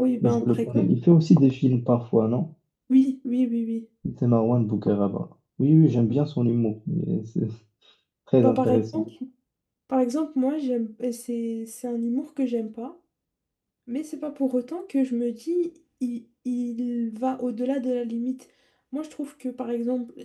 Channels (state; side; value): identical; both; correlation 1.00